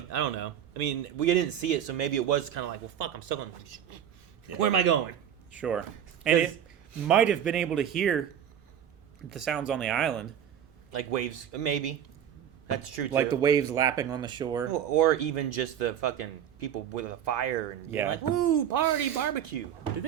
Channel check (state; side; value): quieter; left; 9.5 dB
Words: I don't know. I mean, we didn't see it, so maybe it was kind of like, well, fuck, I'm stuck on. Where am I going? Sure, and Because- it might have been able to hear the sounds on the island, Like waves, maybe. That's true too. like the waves lapping on the shore. or even just the fucking people with a fire and being Yeah. like, woo, party, barbecue. Do